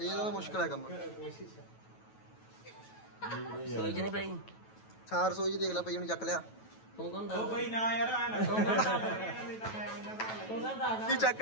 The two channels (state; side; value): late; right; 9.2 ms